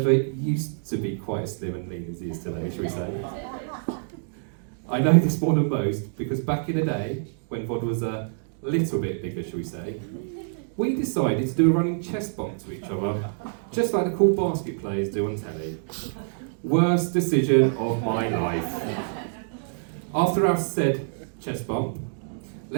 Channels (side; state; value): left; silent; digital silence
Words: used to be quite as slim and lean as he is today, shall we say. I know this more than most because back in the day, when Vod was a little bit bigger, shall we say, we decided to do a running chest bump to each other, just like the cool basket players do on telly. Worst decision of my life. After our said chest bump,